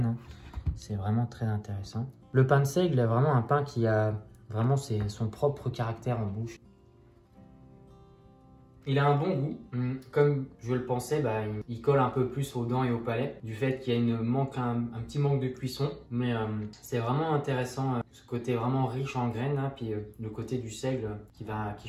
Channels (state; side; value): identical; both; correlation 1.00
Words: C'est vraiment très intéressant. Le pain de seigle est vraiment un pain qui a vraiment son propre caractère en bouche. Il a un bon goût. Comme je le pensais, il colle un peu plus aux dents et au palais du fait qu'il y a un petit manque de cuisson. Mais c'est vraiment intéressant, ce côté vraiment riche en graines, puis le côté du seigle qui va à